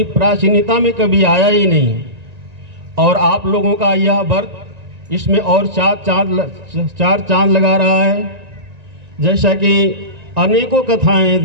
प्राचीनता में कभी आया ही नहीं। और आप लोगों का यह व्रत इसमें और चार चांद लगा रहा है। जैसा कि अनेकों कथाएं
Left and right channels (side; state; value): left; late; 1.9 ms